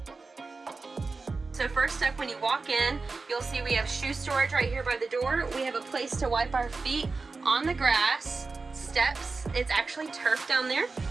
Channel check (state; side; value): quieter; left; 4.0 dB